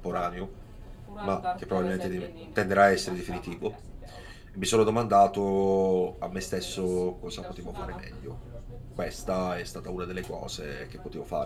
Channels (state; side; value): identical; both; correlation 1.00